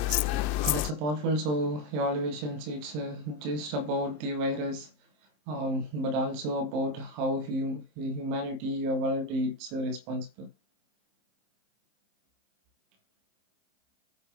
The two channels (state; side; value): late; left; 26 ms